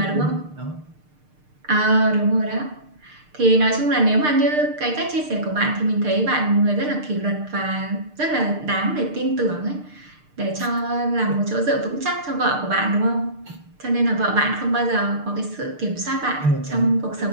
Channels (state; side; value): late; left; 6.6 ms